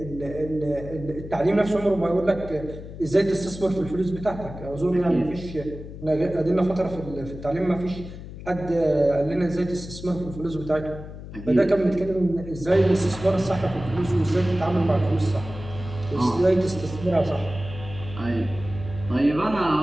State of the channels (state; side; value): noise; left; hum, 12 dB below the sound